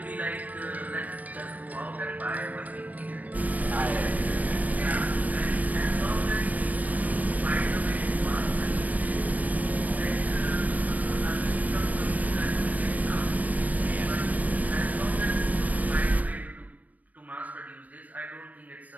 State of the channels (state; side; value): late; left; 0.075 ms